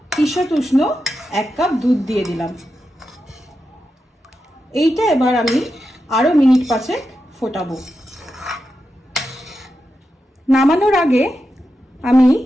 ঈষৎ উষ্ণ 1 কাপ দুধ দিয়ে দিলাম। এইটা এবার আমি আরো মিনিট 5 ফোটাবো। নামানোর আগে আমি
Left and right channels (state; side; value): normal; both; correlation 0.89